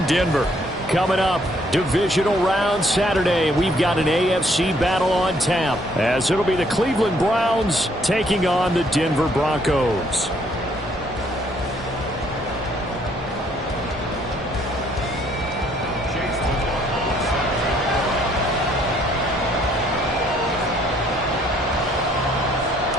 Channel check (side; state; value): both; normal; correlation 0.66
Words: Denver. Coming up, divisional round Saturday. We've got an AFC battle on tap, as it'll be the Cleveland Browns taking on the Denver Broncos.